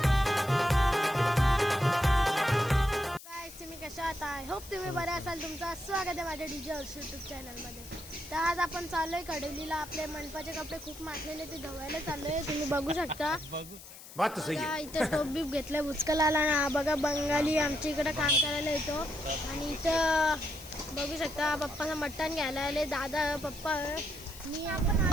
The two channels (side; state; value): left; noise; hiss, 16 dB below the sound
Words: गाइस तुम्ही कशा आहात? आय होप तुम्ही बरे असाल. तुमचं स्वागत आहे माझ्या डीजे हर्ष यूट्यूब चॅनलमध्ये. तर आज आपण चाललोय कडवलीला. आपले मंडपाचे कपडे खूप मागलेले ते धुवायला चाललोय. तुम्ही बघू शकता. बात सही है. इथं टोप बीप घेतलंय बुचकलाला ना. बघा बंगाली आमच्या इकडे काम करायला येतो. आणि इथं बघू शकता पप्पाचं मटण घ्यायला आले दादा पप्पा. मी आपण